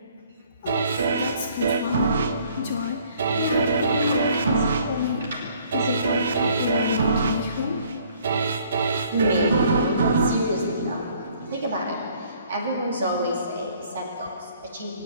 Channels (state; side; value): inverted; both; correlation -0.60